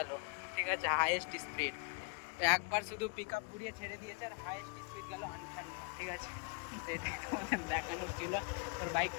ঠিক আছে, হাইয়েস্ট স্পিড। তো একবার শুধু পিক আপ ঘুরিয়ে ছেড়ে দিয়েছে আর হাইয়েস্ট স্পিড গেল 58, ঠিক আছে। তো এটাই তোমাদের দেখানোর ছিল। তোর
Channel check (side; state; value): right; quieter; 33.8 dB